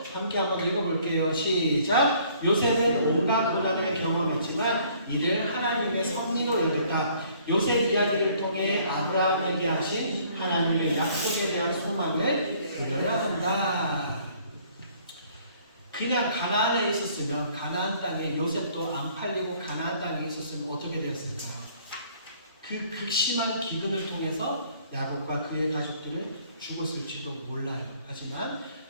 함께 한번 읽어볼게요. 시작. 요셉은 온갖 고난을 경험했지만 이를 하나님의 섭리로 여겼다. 요셉 이야기를 통해 아브라함에게 하신 하나님의 약속에 대한 소망을 그려야 한다. 그냥 가나안에 있었으면, 가나안 땅에 요셉도 안 팔리고 가나안 땅에 있었으면 어떻게 되었을까요? 그 극심한 기근을 통해서 야곱과 그의 가족들은 죽었을지도 몰라요. 하지만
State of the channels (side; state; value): both; inverted; correlation -0.60